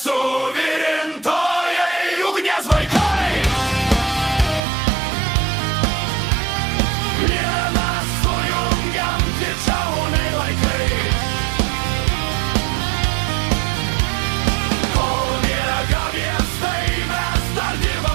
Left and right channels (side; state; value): left; drops out; at 4.6 s